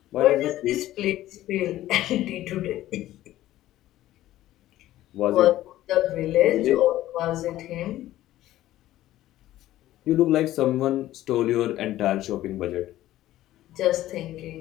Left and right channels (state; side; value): quieter; right; 14.5 dB